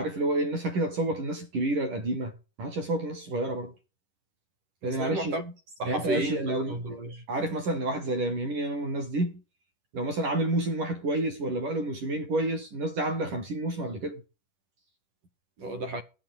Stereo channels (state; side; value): late; left; 11 ms